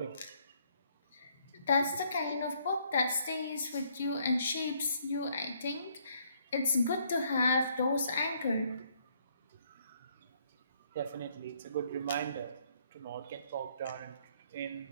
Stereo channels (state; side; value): inverted; both; correlation -0.68